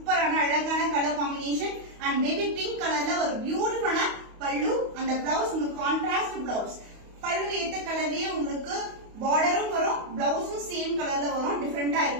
அழகான color combination and baby pink கலர்ல ஒரு பியூட்டிஃபுல்லான பல்லு and the blouse உங்களுக்கு contrast blouse. பல்லு ஏத்த கலர்லயே உங்களுக்கு borderம் வரும், blouseம் சேம் கலர்ல வரும், டிஃபரெண்டா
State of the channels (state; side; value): late; left; 28 ms